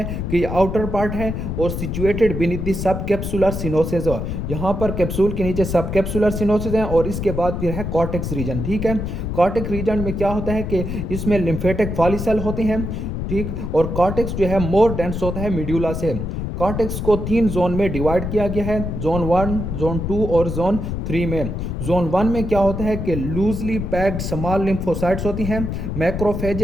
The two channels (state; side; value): noise; left; rumble, 4 dB below the sound